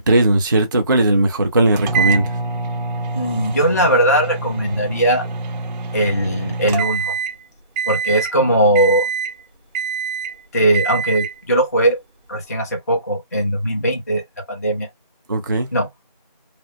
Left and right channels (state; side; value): inverted; both; correlation -0.51